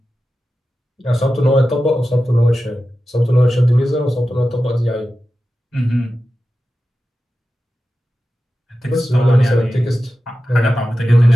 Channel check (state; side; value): normal; both; correlation 0.93